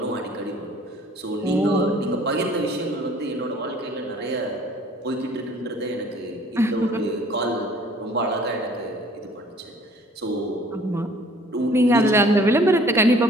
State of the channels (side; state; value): both; normal; correlation 0.54